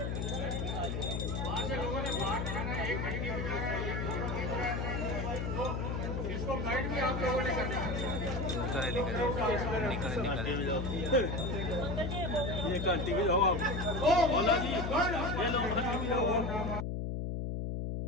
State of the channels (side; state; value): left; noise; hum, 2 dB below the sound